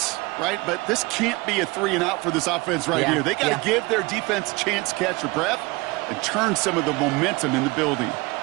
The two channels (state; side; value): quieter; left; 24.0 dB